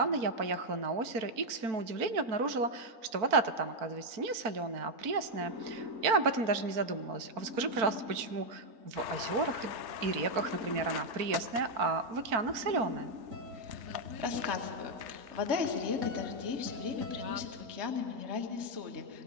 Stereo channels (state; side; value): late; left; 4.5 ms